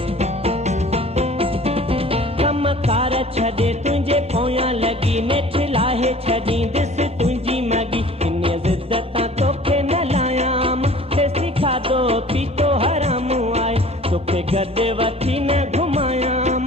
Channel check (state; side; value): normal; both; correlation 0.47